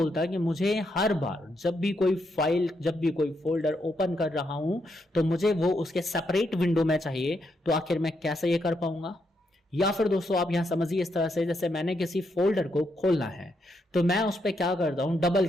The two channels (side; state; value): both; normal; correlation 0.79